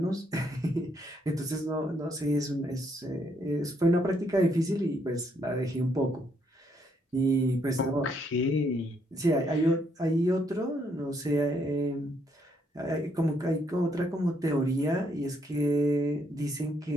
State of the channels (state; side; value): normal; both; correlation 0.72